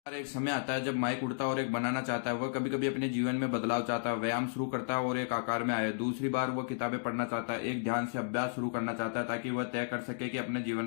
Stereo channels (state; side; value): silent; right; digital silence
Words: और एक समय आता है जब माइक उड़ता है और एक बनाना चाहता है। वह कभी कभी अपने जीवन में बदलाव चाहता है, व्यायाम शुरू करता है और एक आकार में आए। दूसरी बार वह किताबें पढ़ना चाहता है, एक ध्यान से अभ्यास शुरू करना चाहता है ताकि वह तय कर सके कि अपने